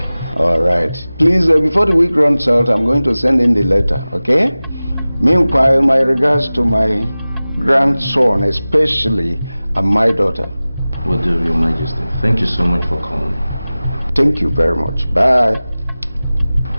All right. Please, before the week runs out, I'm going to send in the letter, okay? Meanwhile, my regards to my grandson, especially, and my daughter. Will do, Your Majesty. Thank you so much for calling. Thank you very much. Bye.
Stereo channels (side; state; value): both; inverted; correlation -0.97